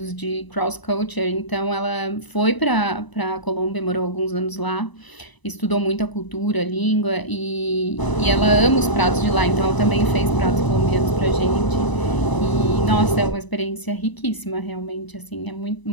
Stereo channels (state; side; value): late; right; 1.0 ms